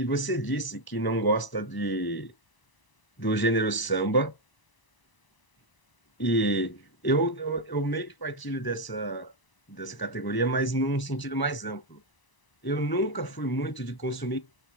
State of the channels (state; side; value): late; right; 1.0 ms